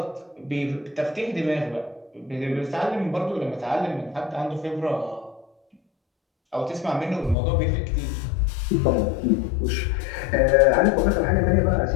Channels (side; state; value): right; drops out; at 7.4 s